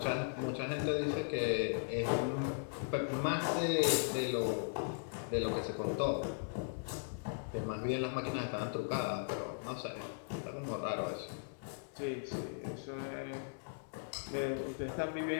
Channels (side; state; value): right; silent; digital silence